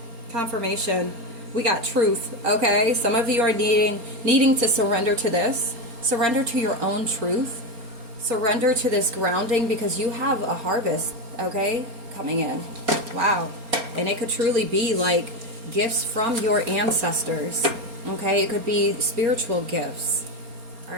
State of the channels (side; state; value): left; late; 4.3 ms